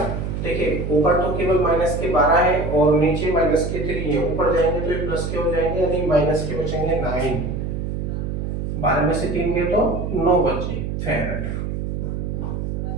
देखिए, ऊपर तो केवल माइनस के 12 है और नीचे माइनस के 3 है, ऊपर जाएंगे तो ये प्लस के हो जाएंगे, यानी माइनस के बचेंगे 9। 12 में से 3 गए तो 9 बचे फेरेड।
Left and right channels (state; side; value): noise; right; hum, 3 dB below the sound